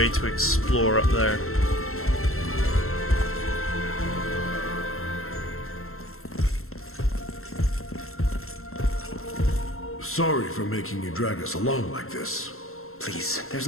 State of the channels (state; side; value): late; right; 0.62 ms